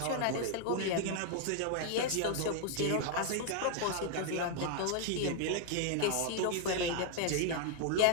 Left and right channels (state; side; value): different; both; correlation 0.00